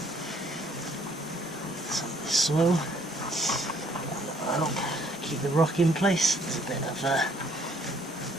with some of this soil, and that'll keep the rock in place. There's a bit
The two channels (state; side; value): normal; both; correlation 0.63